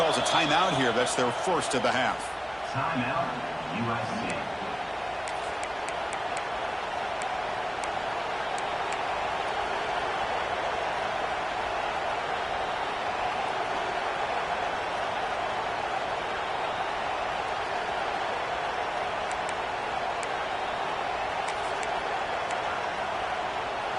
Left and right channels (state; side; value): identical; both; correlation 1.00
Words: a timeout here. That's their first of the half. Timeout, USC.